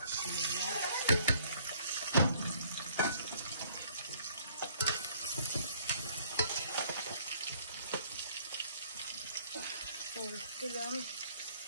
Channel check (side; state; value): both; inverted; correlation -0.60